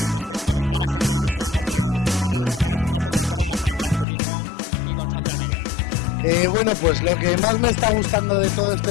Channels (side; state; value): right; drops out; at 4.0 s